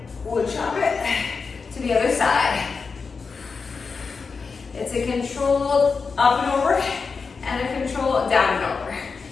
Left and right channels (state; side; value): quieter; right; 5.0 dB